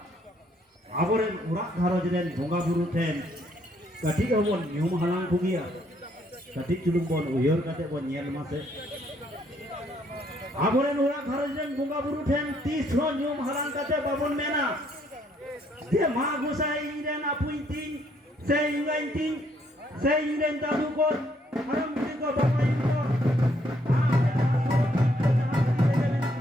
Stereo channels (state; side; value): normal; both; correlation 0.69